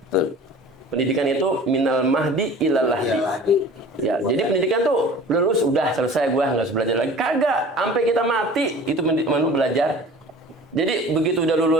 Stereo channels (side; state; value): both; normal; correlation 0.43